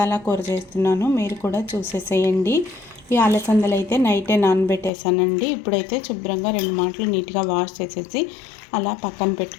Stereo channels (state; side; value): drops out; right; at 4.9 s